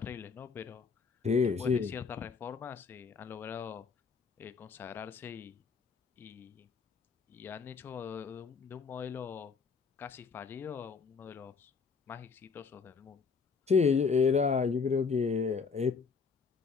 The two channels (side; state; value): right; quieter; 5.3 dB